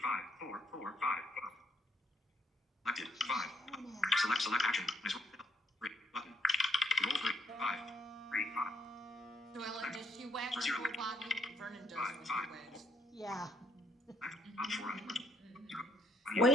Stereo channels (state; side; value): normal; both; correlation 0.71